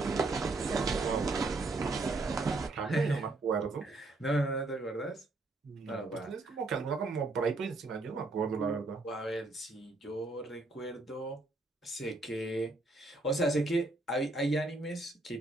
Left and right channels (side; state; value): left; quieter; 3.1 dB